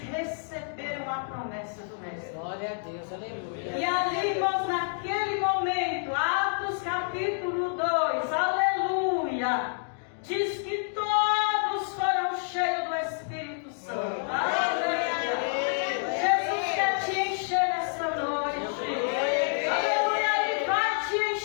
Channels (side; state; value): right; silent; 59 dB below the other